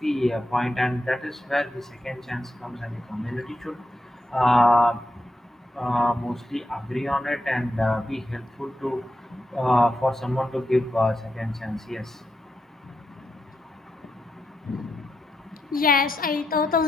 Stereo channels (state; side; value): normal; both; correlation 0.85